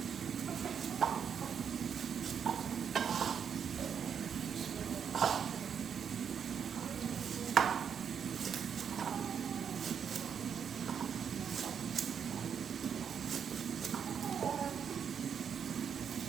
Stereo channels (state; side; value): quieter; left; 7.5 dB